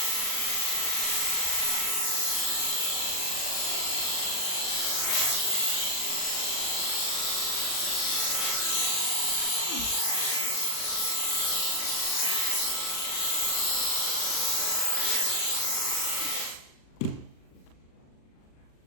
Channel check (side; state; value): right; late; 40 ms